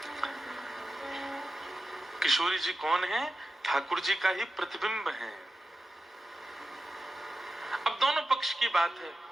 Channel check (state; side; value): normal; both; correlation 0.92